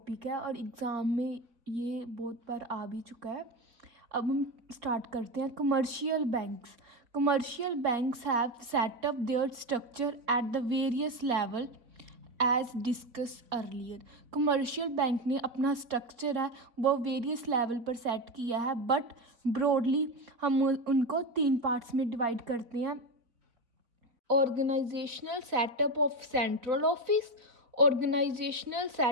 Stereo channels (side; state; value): left; late; 3.9 ms